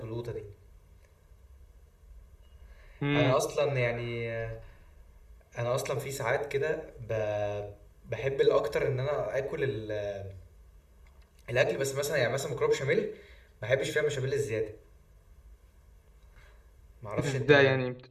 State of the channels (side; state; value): both; identical; correlation 1.00